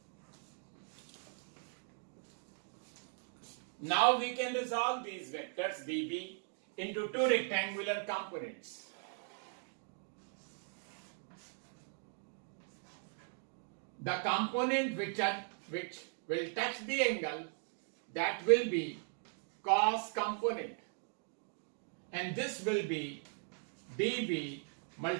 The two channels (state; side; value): silent; left; 52 dB below the other